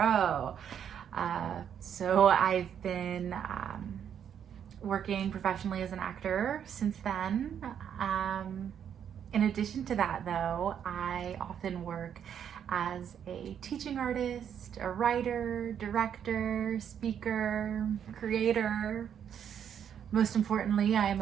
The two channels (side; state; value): left; quieter; 8.7 dB